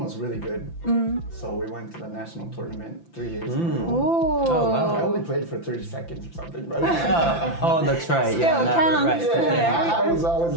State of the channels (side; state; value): right; late; 5.9 ms